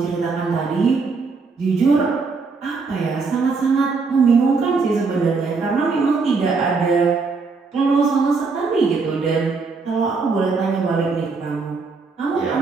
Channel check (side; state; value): left; quieter; 4.5 dB